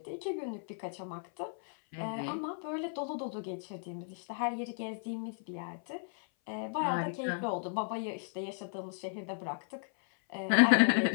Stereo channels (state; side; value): silent; right; 55 dB below the other